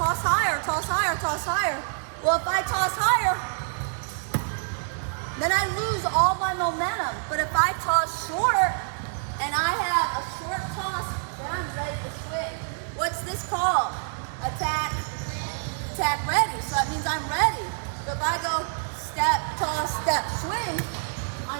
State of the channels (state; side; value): silent; left; 60 dB below the other